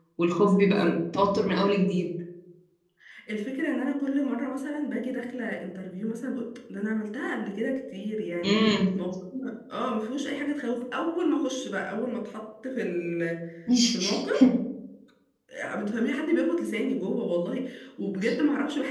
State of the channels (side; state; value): both; identical; correlation 1.00